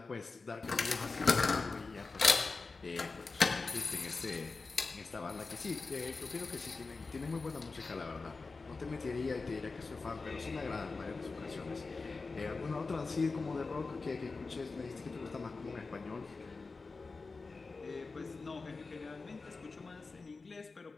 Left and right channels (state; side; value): quieter; right; 4.0 dB